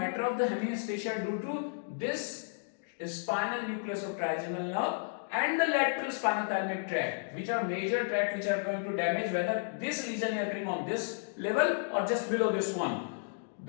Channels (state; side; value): silent; right; digital silence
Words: of the hemianesthesia due to this spinal nucleus of trigeminal nerve and the lateral spinothalmic tract, which are major tract which are going to damage, whether this lesion is occurring on this level or just below this one.